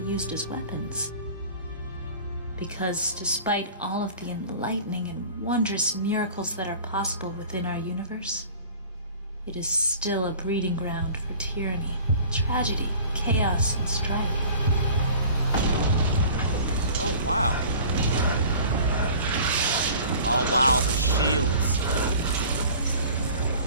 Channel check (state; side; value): inverted; both; correlation -0.44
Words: be used as weapons. Because despite all of the enlightening and wondrous miracles that are possible within our universe, it is still a breeding ground for tyranny, tragedy, chaos, and strife. Oh, wow. Oh, wow, the shields.